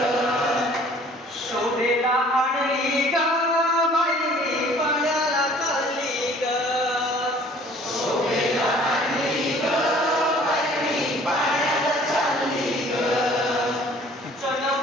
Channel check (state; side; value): normal; both; correlation 0.53